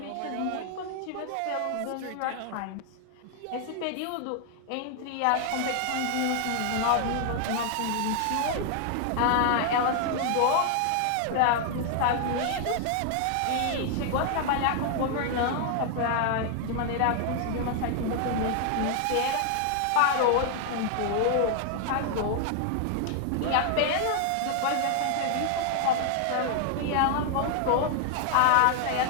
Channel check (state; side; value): different; both; correlation 0.00